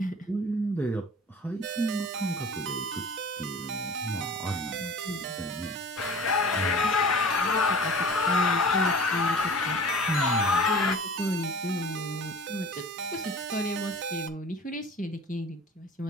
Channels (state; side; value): normal; both; correlation 0.42